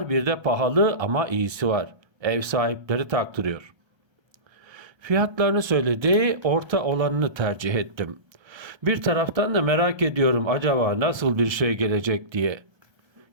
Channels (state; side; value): late; left; 1.3 ms